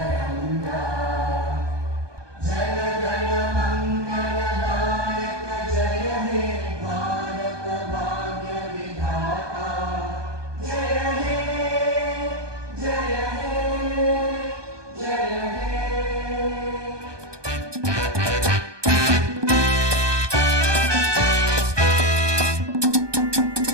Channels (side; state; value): left; late; 1.2 ms